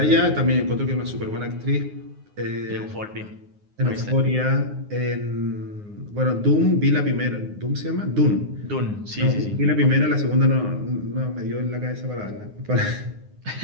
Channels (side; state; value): left; late; 9.6 ms